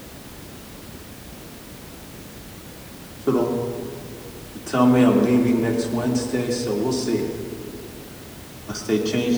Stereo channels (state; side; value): identical; both; correlation 1.00